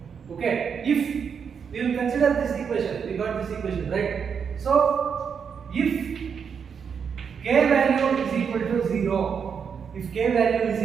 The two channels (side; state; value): left; quieter; 6.7 dB